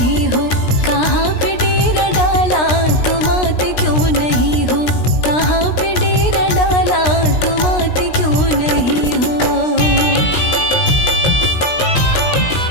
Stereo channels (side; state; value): right; late; 16 ms